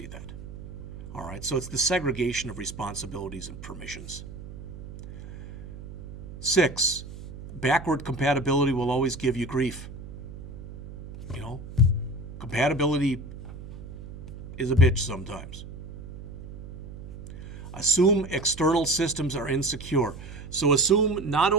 that. All right, so it's the segregation of responsibilities and permissions. 6, backward compatibility will always give you grief. Compatibility is a bitch sometimes. Assume external systems are insecure. So assume not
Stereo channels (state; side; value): noise; right; hum, 12 dB below the sound